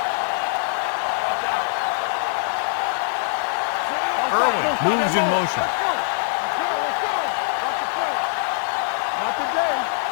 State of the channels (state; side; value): silent; right; digital silence